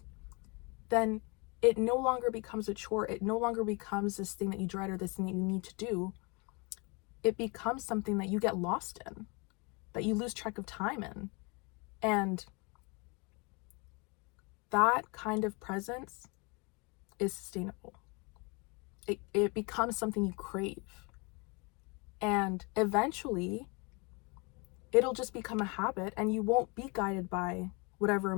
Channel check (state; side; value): quieter; right; 30.1 dB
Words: then it no longer becomes a chore. It no longer becomes this thing that you dread or this thing that you need to do. It becomes something that you get lost in, that you lose track of time in. And that kind of presence is sustainable. It becomes something you crave. And eventually, it'll just become a habit, and you won't be guided by whatever